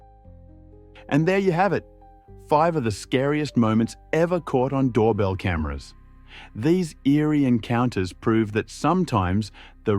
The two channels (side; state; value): both; identical; correlation 1.00